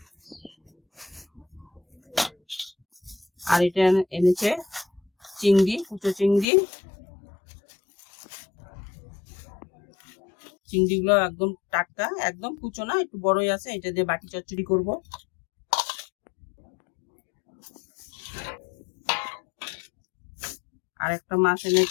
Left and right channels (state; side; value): drops out; right; at 6.5 s